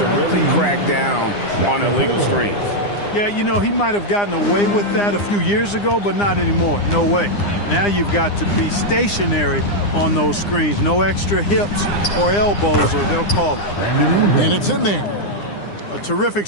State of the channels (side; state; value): right; late; 9.8 ms